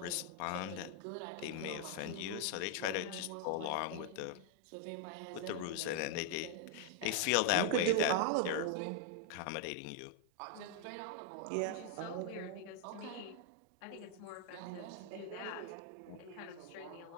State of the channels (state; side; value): different; both; correlation 0.01